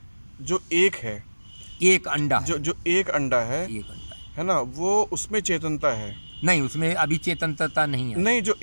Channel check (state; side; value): inverted; both; correlation -1.00